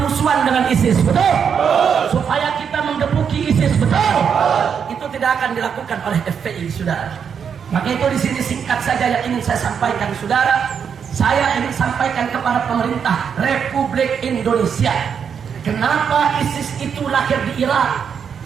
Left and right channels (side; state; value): left; quieter; 7.2 dB